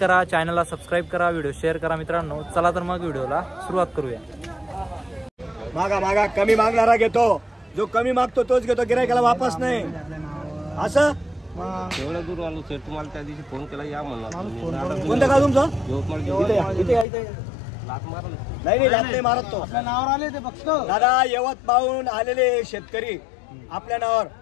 चॅनलला सबस्क्राईब करा, व्हिडिओ शेअर करा. मित्रांनो, चला तर मग व्हिडिओला सुरुवात करूया. मागा मागा कमी मागणारा घेतो, जो कमी मागतो तोच घेतो, गिरायकाला वापस नाही. असं एवढं दूर आलो सर, तुम्हाला त्या दिवशी फोन केला या म्हणला. कोणतं का तुमचं? लात मारलं नाही लात नाही मारत तो. आपल्या नावावर आले ते बघतो दादा. यवत पाहून आलेले शेतकरी आपल्या नावावर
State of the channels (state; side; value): drops out; right; at 17.1 s